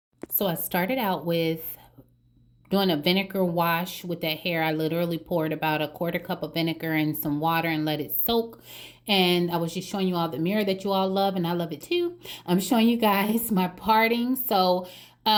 So I started out with doing a vinegar wash with that hair. I literally poured about a quarter cup of vinegar and some water and let it soak. And I was just showing you all the mirror that you all love, and I love it too. I'm showing you guys my parting. So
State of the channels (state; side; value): identical; both; correlation 1.00